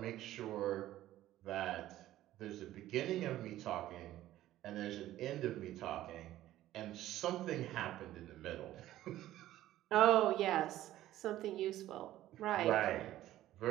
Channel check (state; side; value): quieter; left; 14.2 dB